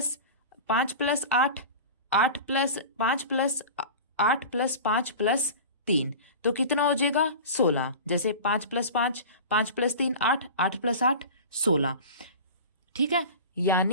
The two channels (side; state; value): both; inverted; correlation -0.34